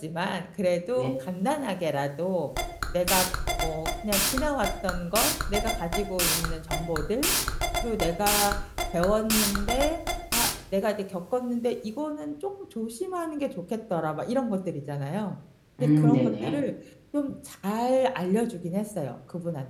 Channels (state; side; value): identical; both; correlation 1.00